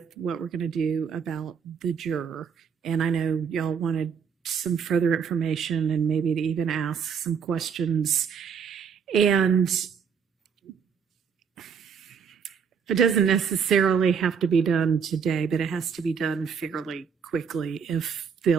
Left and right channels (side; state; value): left; quieter; 6.7 dB